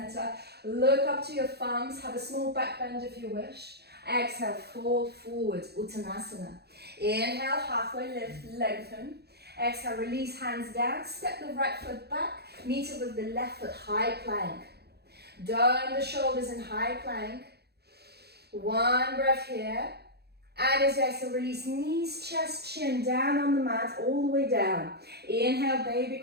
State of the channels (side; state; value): left; late; 0.47 ms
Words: Look up to your thumbs, have a small back bend if you wish. Exhale, fold forward, Uttanasana. Inhale, halfway lift, lengthen. Exhale, release hands down, step the right foot back, meet it with the left foot, high plank. Down the shoulders in high plank. 1 breath here. And as you exhale, release knees, chest, chin down on the mat, all the way down. Inhale, baby